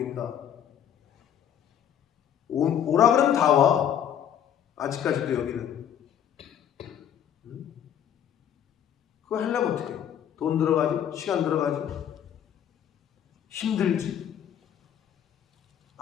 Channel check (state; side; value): quieter; right; 9.5 dB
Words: 오라 그러면 다 와. 아직까지도 여기는. 그거 하려면 어떻게? 돈 들어가죠? 시간 들어가죠? 힘들지.